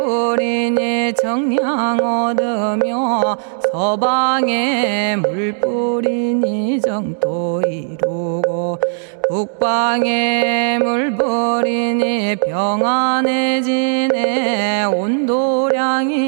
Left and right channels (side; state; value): left; silent; digital silence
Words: 정량 얻으며 서방에 물뿌리니 정토 이루고 북방에 물뿌리니 평안해지네